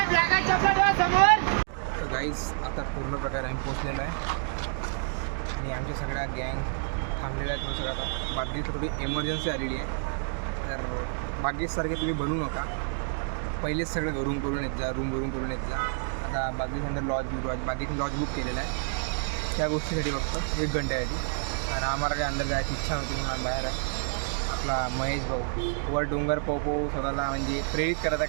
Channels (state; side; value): silent; left; 59 dB below the other